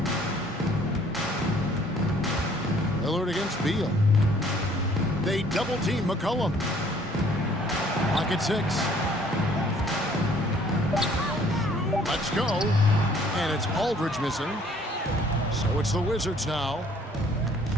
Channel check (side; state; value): both; normal; correlation 0.58